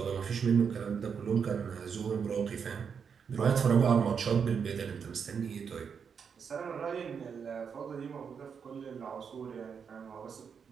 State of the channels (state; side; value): quieter; left; 6.6 dB